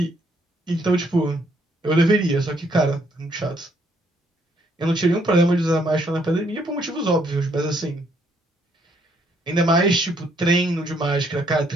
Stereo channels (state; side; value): normal; both; correlation 0.69